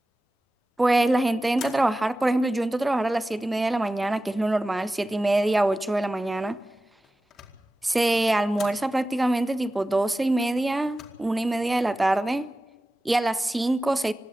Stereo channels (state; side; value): normal; both; correlation 0.95